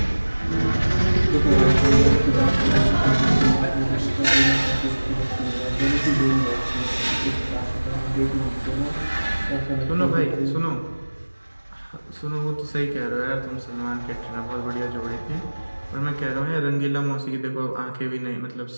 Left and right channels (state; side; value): inverted; both; correlation -1.00